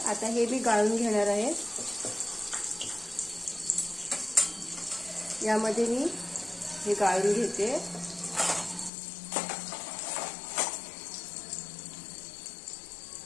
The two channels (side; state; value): right; drops out; at 8.9 s